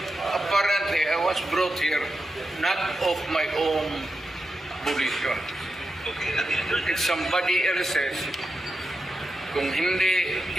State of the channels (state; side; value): normal; both; correlation 0.89